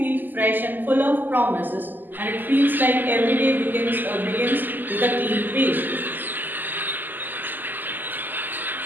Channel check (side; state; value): left; late; 0.088 ms